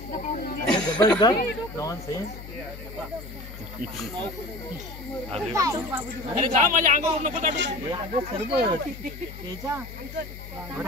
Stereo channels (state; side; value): noise; left; hum, 13 dB below the sound